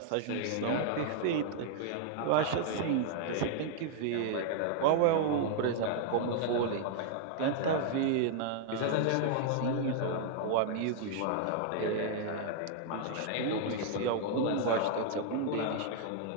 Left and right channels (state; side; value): different; both; correlation -0.01